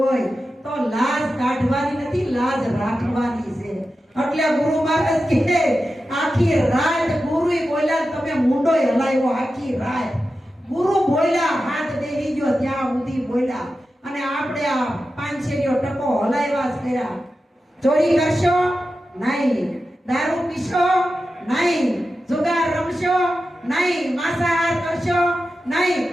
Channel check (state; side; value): normal; both; correlation 0.92